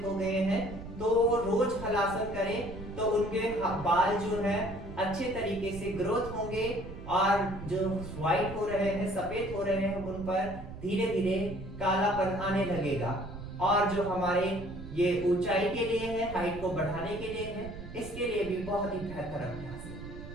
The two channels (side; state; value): right; noise; rumble, 12 dB below the sound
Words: हो गए हैं तो रोज हलासन करें तो उनके बाल जो है अच्छे तरीके से ग्रोथ होंगे और जो व्हाइट हो रहे हैं, सफेद हो रहे हैं, उन पर धीरे धीरे कालापन आने लगेगा। और जो हमारे ये ऊंचाई के लिए है, हाइट को बढ़ाने के लिए है, इसके लिए भी बहुत ही बेहतर अभ्यास है।